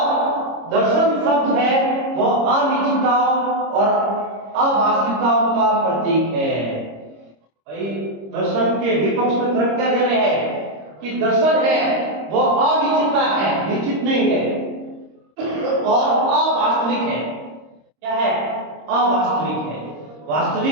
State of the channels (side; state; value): left; late; 26 ms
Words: दर्शन शब्द है वो अनिश्चितताओं और अवास्तविकताओं का प्रतीक है। भाई दर्शन के विपक्ष में तर्क क्या दे रहे हैं कि दर्शन है वो अनिश्चितता है, निश्चित नहीं है, और अवास्तविक है। क्या है? अवास्तविक है,